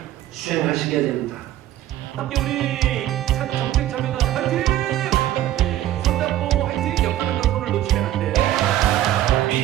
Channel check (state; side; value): quieter; left; 13.2 dB